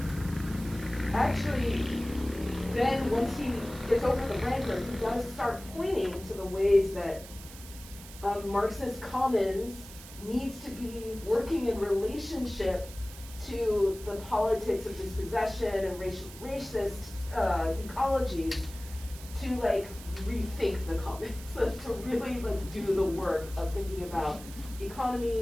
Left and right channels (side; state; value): right; noise; hiss, 16 dB below the sound